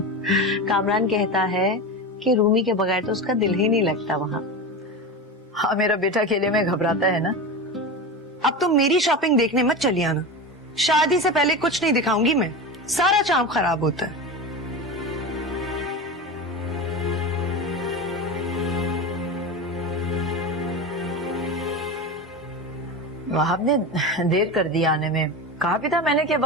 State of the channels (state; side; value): normal; both; correlation 0.24